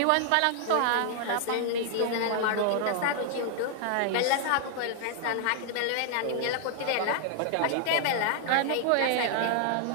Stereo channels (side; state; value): both; different; correlation 0.00